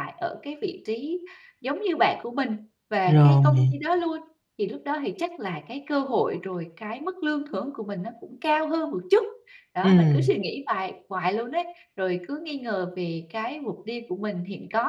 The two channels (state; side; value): identical; both; correlation 1.00